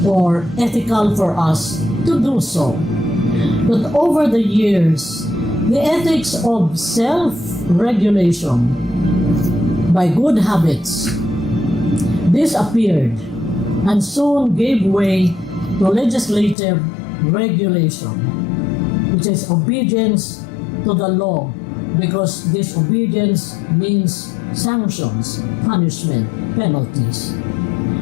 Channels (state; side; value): drops out; right; at 16.6 s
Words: or ethical for us to do so. But over the years, the ethics of self-regulation by good habits disappeared and soon gave way to legislative regulation, which is obedience to the law, because disobedience means sanctions, punishment, penalties.